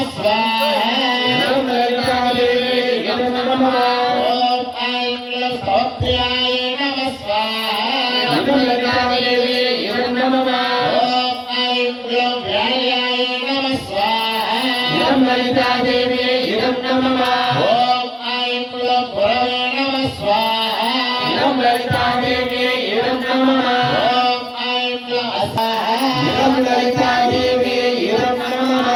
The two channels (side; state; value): both; identical; correlation 1.00